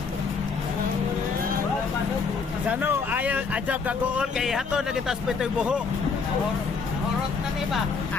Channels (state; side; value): quieter; right; 5.1 dB